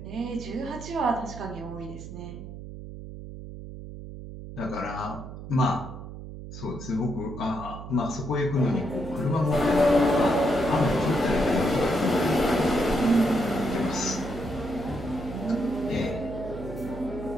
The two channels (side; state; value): right; noise; hum, 11 dB below the sound